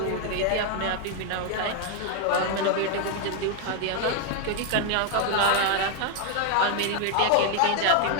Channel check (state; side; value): different; both; correlation 0.00